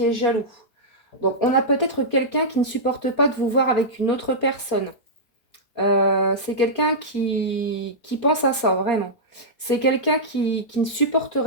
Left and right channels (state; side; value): late; right; 4.3 ms